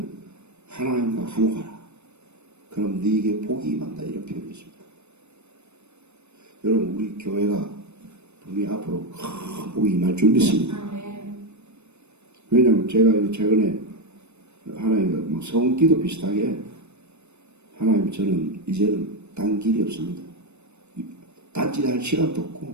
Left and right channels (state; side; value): late; left; 0.81 ms